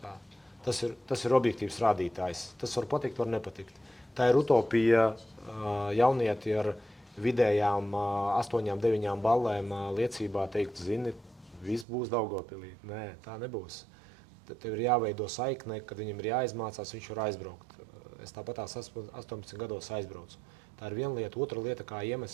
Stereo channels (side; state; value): left; drops out; at 11.9 s